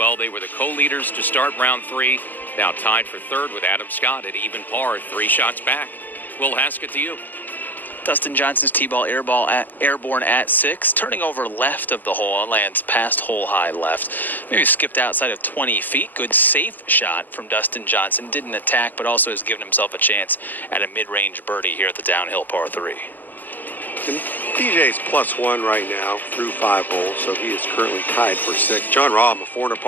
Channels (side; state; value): right; late; 0.086 ms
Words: They were the co-leaders to start round 3. Now tied for 3rd with Adam Scott at even par, 3 shots back. Will Haskett to you. Dustin Johnson's tee-ball airborne at 6, turning over left of the hole and lands past hole high left. Maybe skipped outside of 20 feet. Good safe shot from Dustin Johnson. Didn't attack, but also has given himself a chance at a mid-range birdie here at the downhill par 3. And DJ's +1 right now through 5 holes, so he is currently tied for 6. John Rahm, a 4 under